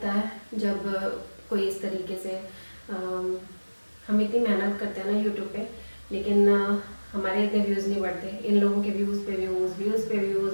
है जब कोई इस तरीके से हम इतनी मेहनत करते हैं ना यूट्यूब पे, लेकिन हमारे इतने व्यूज़ नहीं बढ़ते। इन लोगों के व्यूज़ पे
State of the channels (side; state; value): both; inverted; correlation -1.00